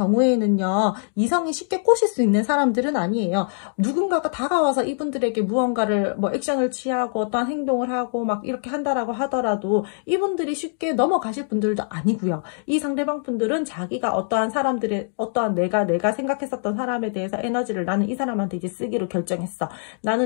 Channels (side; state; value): right; silent; digital silence